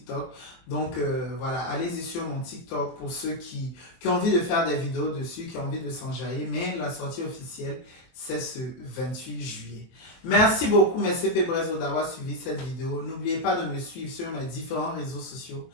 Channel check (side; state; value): right; late; 23 ms